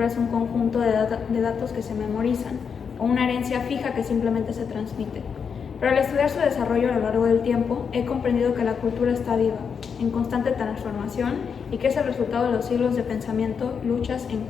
es un conjunto de datos que se memorizan o una herencia fija que simplemente se transmite. Pero al estudiar su desarrollo a lo largo del tiempo, he comprendido que la cultura está viva, en constante transformación y que es el resultado de los siglos de pensamiento, luchas,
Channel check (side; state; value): right; quieter; 6.5 dB